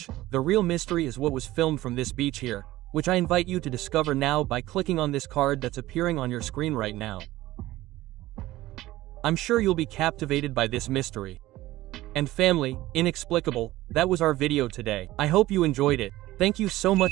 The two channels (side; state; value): left; quieter; 16.6 dB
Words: the real mystery is what was filmed from this beach here, which I invite you to discover now by clicking on this card that's appearing on your screen right now. I'm sure you'll be captivated by this mystery. And family, inexplicable, that was our video today. I hope you enjoyed it. Thank you so